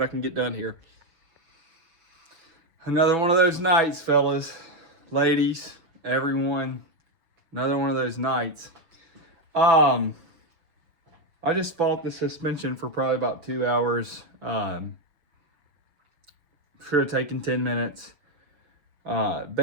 I can get done here. Another one of those nights, fellas, ladies, everyone. Another one of those nights. I just fought the suspension for probably about 2 hours. Should have taken 10 minutes.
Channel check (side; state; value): left; late; 6.1 ms